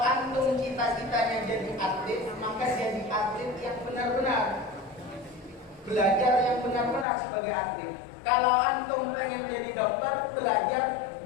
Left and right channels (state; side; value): drops out; right; at 7.1 s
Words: antum cita-citanya jadi atlet, maka jadi atlet yang benar-benar, belajar yang benar-benar sebagai atlet. Kalau antum pengen jadi dokter, belajar